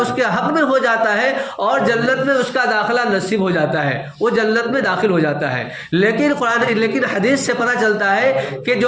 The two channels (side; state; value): both; identical; correlation 1.00